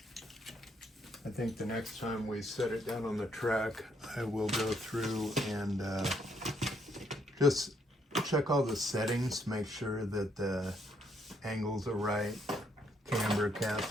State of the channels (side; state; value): both; normal; correlation 0.72